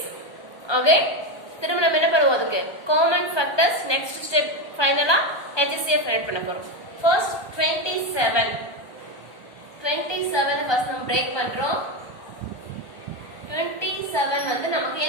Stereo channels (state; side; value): late; right; 1.2 ms